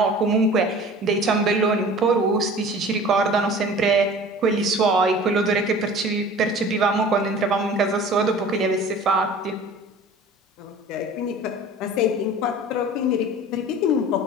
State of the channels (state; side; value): normal; both; correlation 0.43